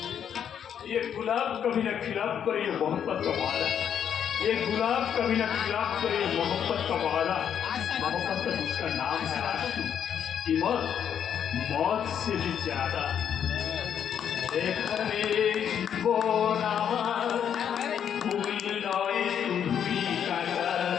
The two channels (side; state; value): right; quieter; 8.7 dB